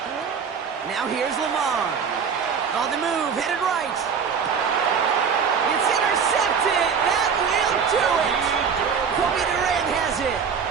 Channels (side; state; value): left; quieter; 6.4 dB